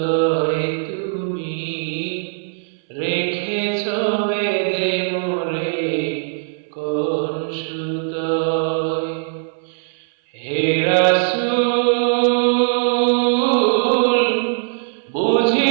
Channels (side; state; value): left; silent; 61 dB below the other